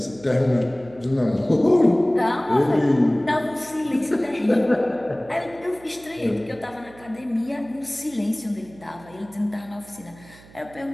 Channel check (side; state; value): right; noise; hum, 23 dB below the sound